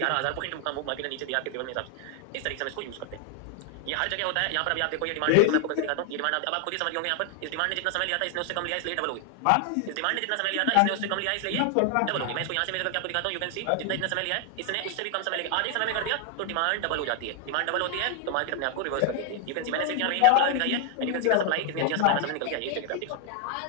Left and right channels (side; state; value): both; different; correlation 0.00